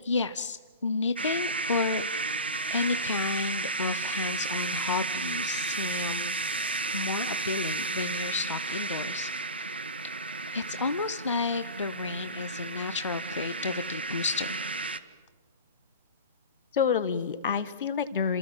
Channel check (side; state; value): both; inverted; correlation -0.30